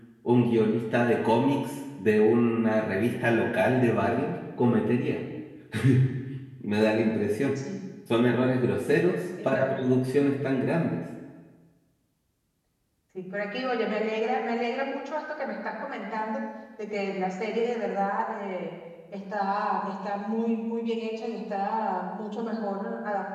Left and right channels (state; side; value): identical; both; correlation 1.00